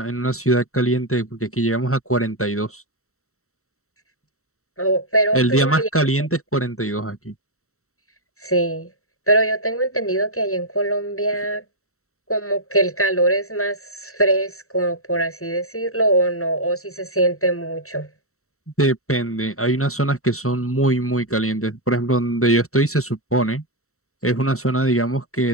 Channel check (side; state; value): right; late; 0.64 ms